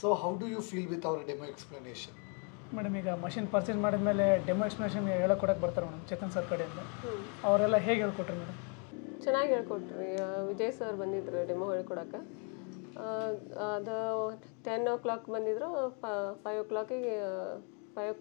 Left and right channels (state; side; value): quieter; right; 38.0 dB